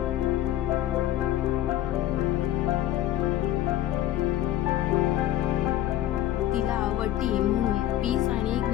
तिला वटी म्हणून पीस आणि एक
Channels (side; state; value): right; quieter; 13.1 dB